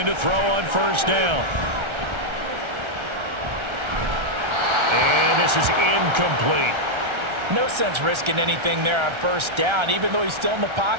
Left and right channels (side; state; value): left; late; 1.3 ms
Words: to throw on first down. And this is incomplete. No sense risking anything there on first down. Even though he's still in the